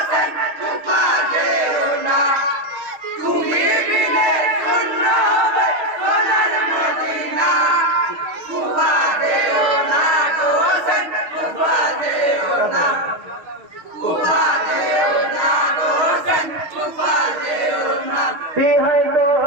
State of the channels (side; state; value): left; late; 6.3 ms